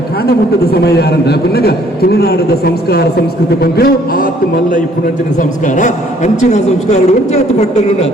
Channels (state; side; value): normal; both; correlation 0.61